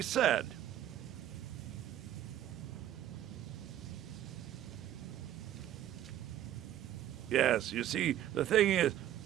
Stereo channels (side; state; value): left; quieter; 12.1 dB